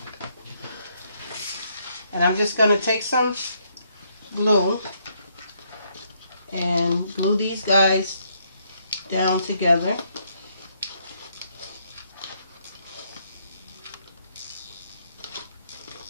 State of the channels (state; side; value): inverted; both; correlation -0.72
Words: And I'm just going to take some glue and glue these guys down together.